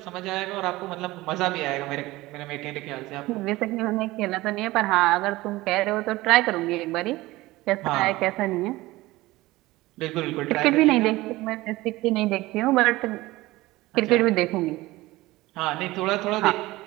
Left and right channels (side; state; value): left; quieter; 19.0 dB